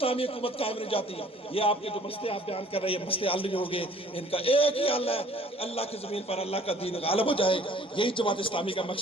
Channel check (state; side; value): normal; both; correlation 0.55